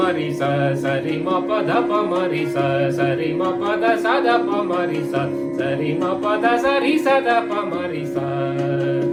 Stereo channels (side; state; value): both; identical; correlation 1.00